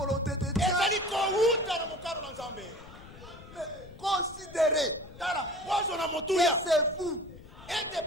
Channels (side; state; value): left; noise; rumble, 18 dB below the sound